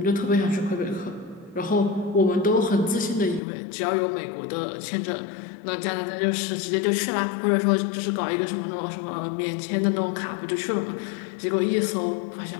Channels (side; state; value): right; drops out; at 3.4 s